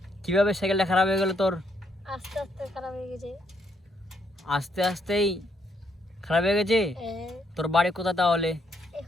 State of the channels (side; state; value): both; normal; correlation 0.73